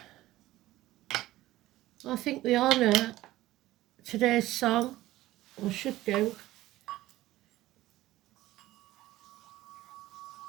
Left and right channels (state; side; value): quieter; left; 16.3 dB